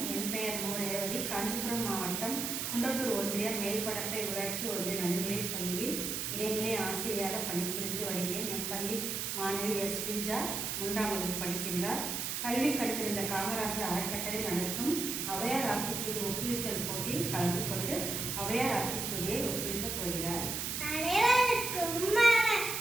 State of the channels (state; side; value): noise; right; hiss, 2 dB below the sound